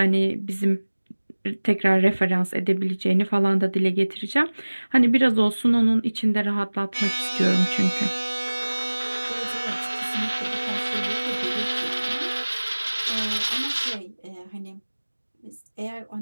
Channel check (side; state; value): both; inverted; correlation -1.00